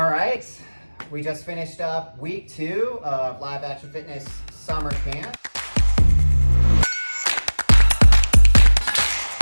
right. We just finished up week 2 of Live Action Fitness Summer Camp.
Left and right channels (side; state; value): both; inverted; correlation -1.00